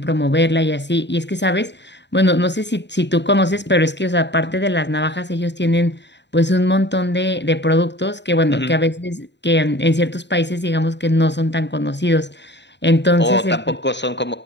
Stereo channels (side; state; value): right; late; 0.51 ms